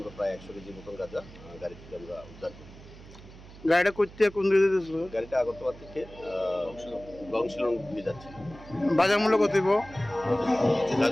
প্রায় 100 কেজি মতন গাঁজা গাড়ি থেকে আমরা উদ্ধার করি। গাড়িটা করতে কোন দিকে যাচ্ছিল? গাড়িটা আগরতলা থেকে গংশিলং দিকে যাচ্ছে। বাজার মূল্য কত দিব?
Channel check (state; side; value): noise; right; hum, 18 dB below the sound